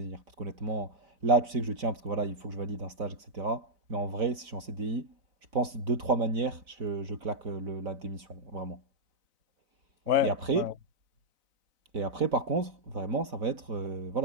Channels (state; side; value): late; left; 4.0 ms